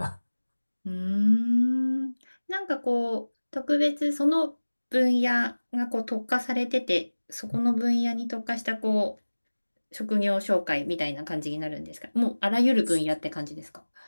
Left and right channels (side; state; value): both; inverted; correlation -1.00